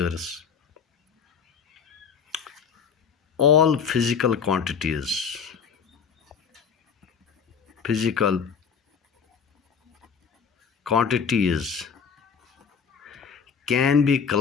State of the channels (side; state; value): right; quieter; 6.5 dB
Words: All physical quantities can be